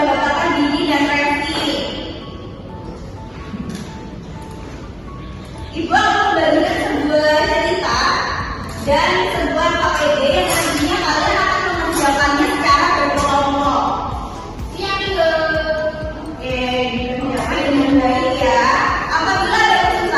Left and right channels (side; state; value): both; identical; correlation 1.00